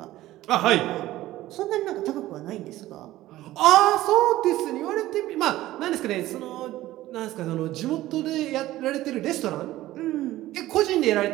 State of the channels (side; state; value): left; quieter; 15.7 dB